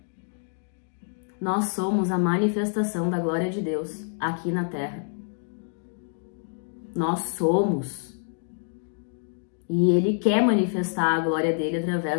Nós somos a manifestação da glória de Deus aqui na terra. Nós somos. E Ele quer manifestar a glória dele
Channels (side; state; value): right; silent; 60 dB below the other